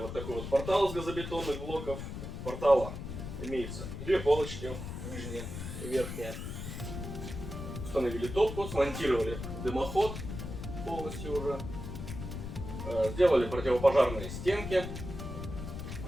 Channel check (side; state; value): left; noise; rumble, 7 dB below the sound